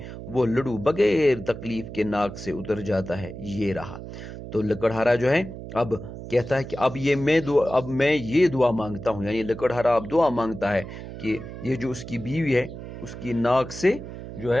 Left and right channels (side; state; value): right; noise; hum, 11 dB below the sound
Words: وہ لڈو بغیر تکلیف کے ناک سے اتر جاتا ہے۔ یہ رہا۔ تو لکڑہارا جو ہے اب کہتا ہے کہ اب میں یہ دعا مانگتا ہوں، یعنی لکڑہارا اب دعا مانگتا ہے کہ یہ جو اس کی بیوی ہے اس کی ناک سے جو